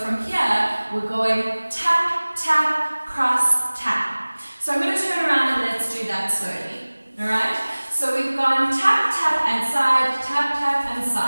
here, we're going tap, tap, cross, tap. So I'm going to turn around and let's do that slowly. Alright? So we've gone tap, tap and side, tap, tap and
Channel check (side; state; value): both; inverted; correlation -1.00